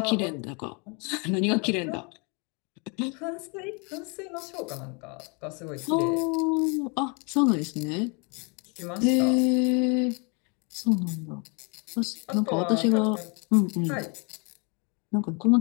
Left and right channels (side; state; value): right; quieter; 33.1 dB